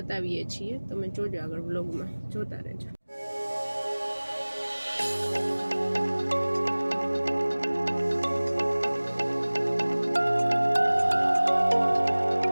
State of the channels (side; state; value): both; inverted; correlation -1.00